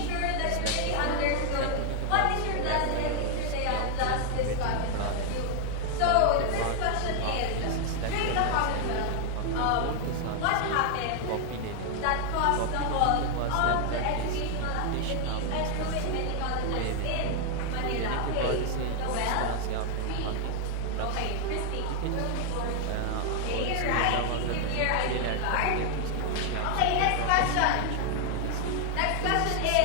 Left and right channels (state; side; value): different; both; correlation 0.00